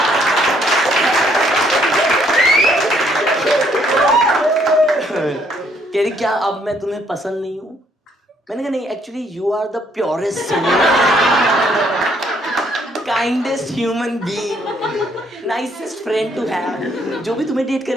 कह रही क्या अब मैं तुम्हें पसंद नहीं हूं? मैंने कहा नहीं, actually you are the purest kindest human being, nicest friend to have. जो भी तुम्हें डेट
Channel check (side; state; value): both; normal; correlation 0.68